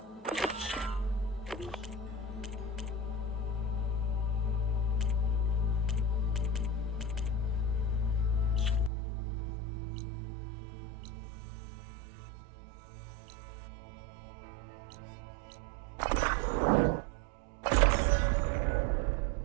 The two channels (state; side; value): drops out; left; at 8.9 s